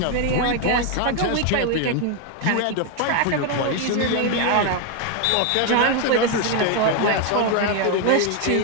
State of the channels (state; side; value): different; both; correlation 0.01